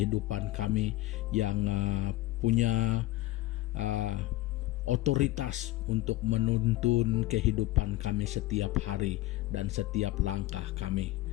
kami, yang punya otoritas untuk menuntun kehidupan kami setiap hari dan setiap langkah kami.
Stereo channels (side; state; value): right; quieter; 17.5 dB